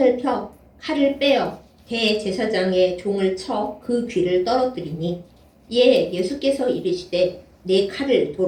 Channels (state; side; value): identical; both; correlation 1.00